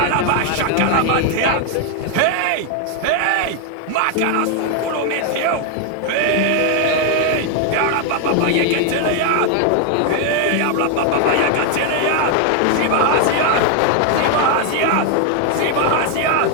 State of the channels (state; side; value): different; both; correlation 0.00